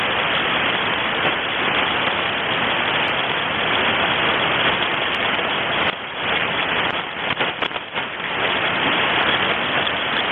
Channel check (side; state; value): both; identical; correlation 1.00